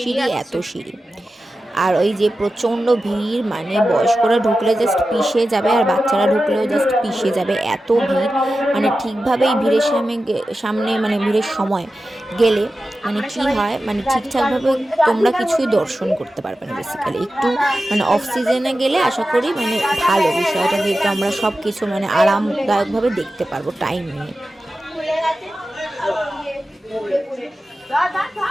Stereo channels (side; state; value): both; normal; correlation 0.93